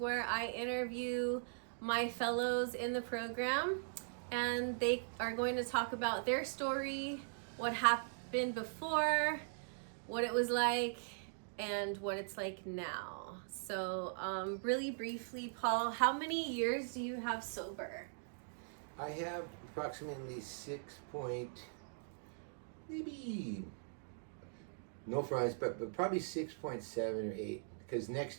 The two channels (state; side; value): silent; left; digital silence